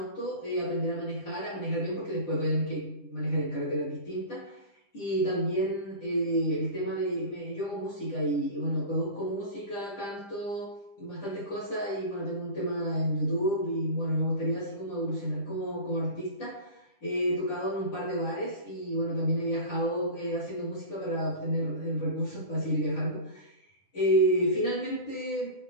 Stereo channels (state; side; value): late; right; 10 ms